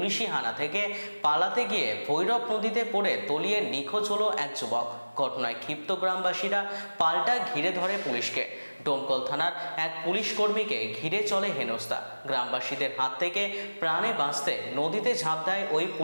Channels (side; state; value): both; inverted; correlation -1.00